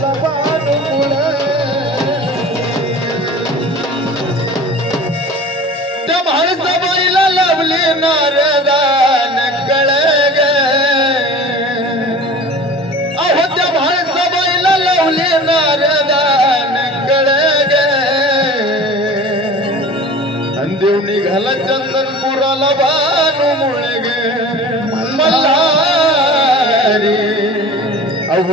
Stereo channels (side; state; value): both; normal; correlation 0.39